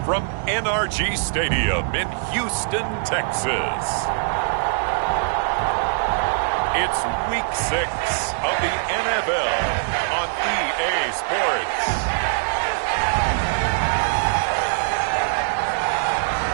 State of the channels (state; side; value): silent; left; 64 dB below the other